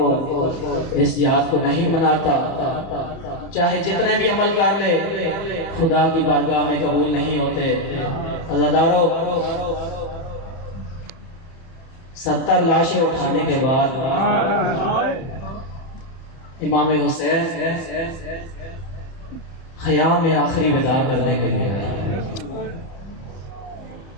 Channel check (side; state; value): right; late; 30 ms